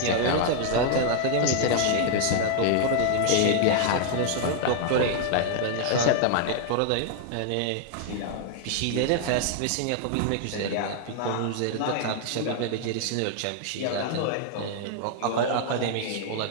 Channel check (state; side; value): different; both; correlation 0.00